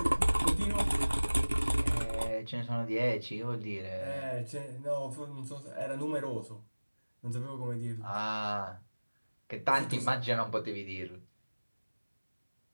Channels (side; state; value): both; inverted; correlation -1.00